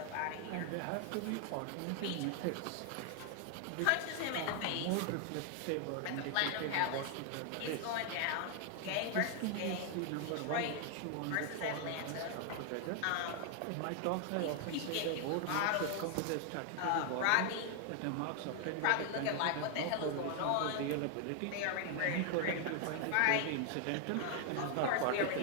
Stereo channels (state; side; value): different; both; correlation 0.00